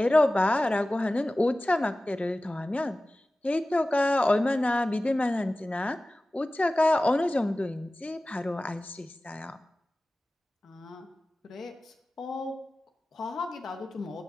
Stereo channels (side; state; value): both; normal; correlation 0.96